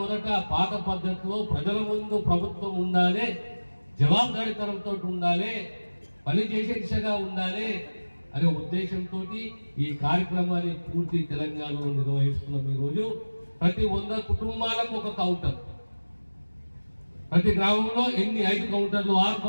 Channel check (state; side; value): inverted; both; correlation -1.00